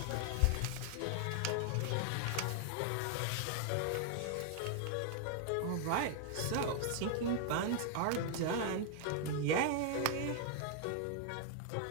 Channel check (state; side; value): different; both; correlation 0.00